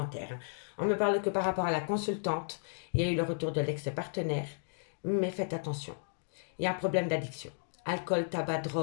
On me parle que par rapport à la consultante, il y a eu le retour de l'ex-partenaire, mais faites attention. Il y a un problème d'addiction. Alcool, tabac,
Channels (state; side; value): silent; right; digital silence